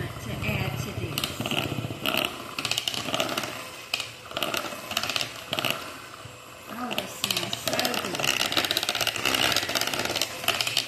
to add to this.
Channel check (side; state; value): both; identical; correlation 1.00